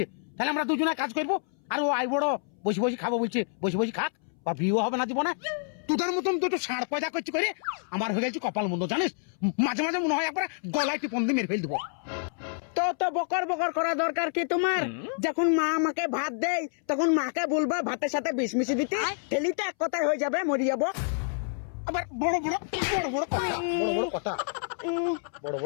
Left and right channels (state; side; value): silent; right; 59 dB below the other